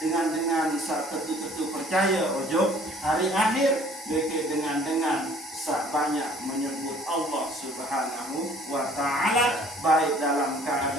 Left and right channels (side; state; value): both; normal; correlation 0.55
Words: tetu-tetu percaya ujug hari akhir, dengan sak banyak menyebut Allah Subhanahu wa taala baik dalam